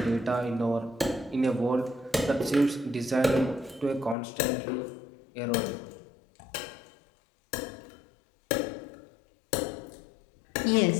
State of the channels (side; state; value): right; drops out; at 4.2 s